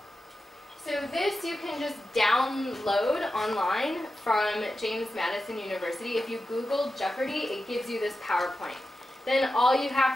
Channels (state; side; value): normal; both; correlation 0.91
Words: So this you can just download online from James Madison University. If you Google Jeopardy, it gives you this PowerPoint. Then all you